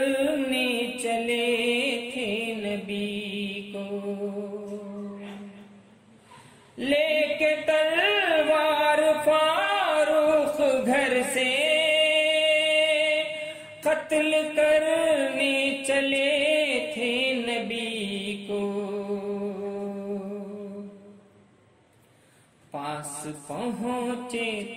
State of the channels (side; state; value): both; identical; correlation 1.00